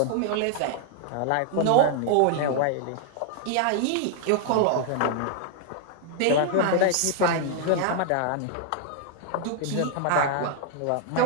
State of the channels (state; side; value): different; both; correlation 0.00